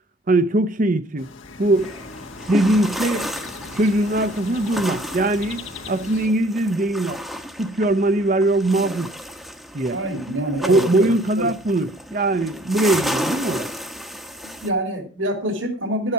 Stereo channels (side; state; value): both; normal; correlation 0.55